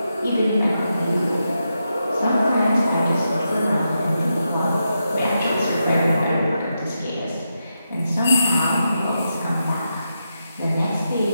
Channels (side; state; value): both; inverted; correlation -0.85